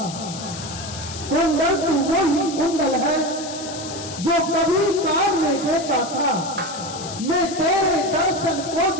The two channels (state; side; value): noise; left; hiss, 11 dB below the sound